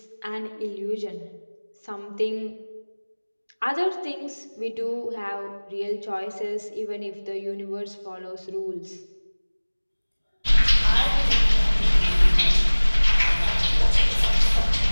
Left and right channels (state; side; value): inverted; both; correlation -1.00